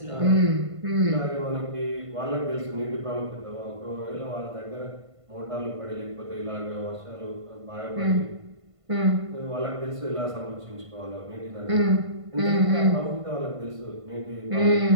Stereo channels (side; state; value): left; late; 1.5 ms